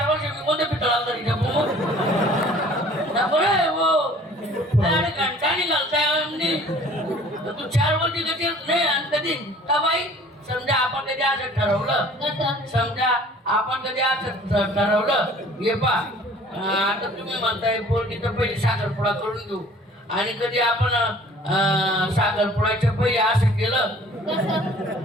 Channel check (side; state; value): both; normal; correlation 0.51